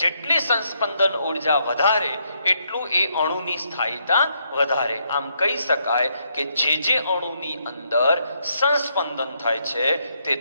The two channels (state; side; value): inverted; both; correlation -0.75